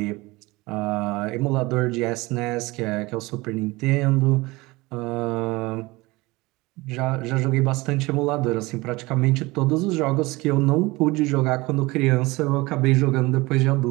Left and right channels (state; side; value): quieter; left; 22.1 dB